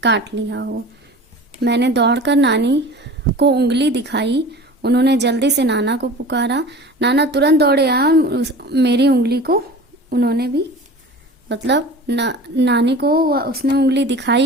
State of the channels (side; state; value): both; normal; correlation 0.39